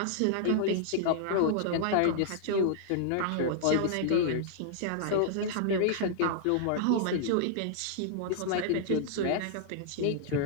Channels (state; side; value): different; both; correlation -0.01